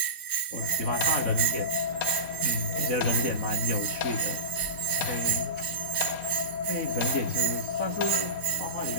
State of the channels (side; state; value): right; late; 4.2 ms